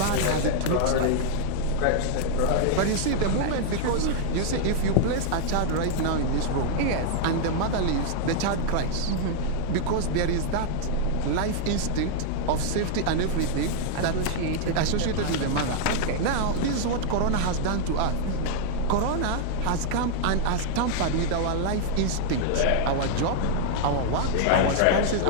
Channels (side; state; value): both; different; correlation -0.01